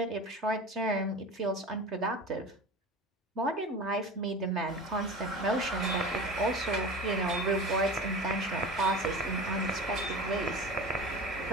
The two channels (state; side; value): normal; both; correlation 0.33